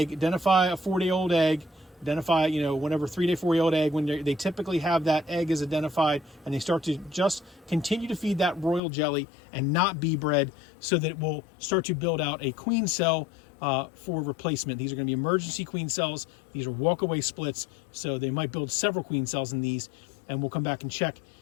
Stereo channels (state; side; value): drops out; right; at 8.8 s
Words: identify a 4-day-old egg, identify, whenever 3-day, 4-day-old egg, when they typically have that egg is identified, and they start to just continue to feed that royal jelly and not bee bread, so that it will start to build out a queen cell for replacement. These are going to be emergency queen cells. These are walk-away splits, so they might build several queen cells in these, and we'll come back and check